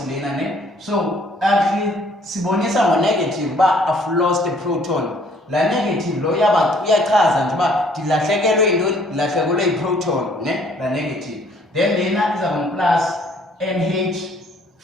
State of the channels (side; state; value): both; normal; correlation 0.60